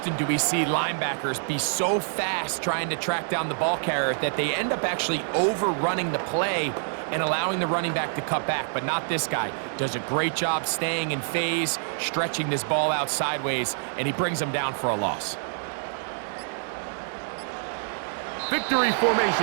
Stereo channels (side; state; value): left; silent; 61 dB below the other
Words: do we see linebackers be so fast trying to track down the ball carrier that they end up actually overrunning the play and allowing the running back to cut back? But not this guy. Does a great job staying in phase, stretching this ball out sideways, and he brings them down for a loss. Victory